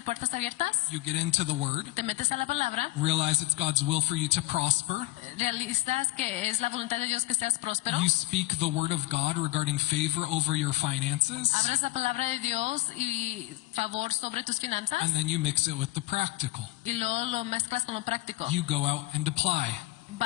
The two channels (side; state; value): right; quieter; 19.1 dB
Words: puertas abiertas, you get into the word, te metes a la palabra, realize it's God's will for you to prosper. realizas que es la voluntad de Dios que seas próspero, You speak the word of God regarding favor over your finances, abres la palabra de Dios y favor sobre tus finanzas, and then you mix it with the practical. y luego lo mezclas con lo práctico. You go out and apply.